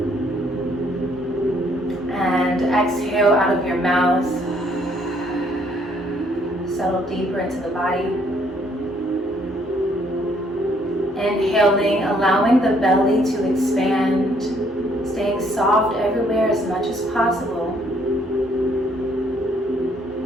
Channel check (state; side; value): normal; both; correlation 0.66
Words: And exhale out of your mouth. Settle deeper into the body. Inhaling, allowing the belly to expand, staying soft everywhere as much as possible.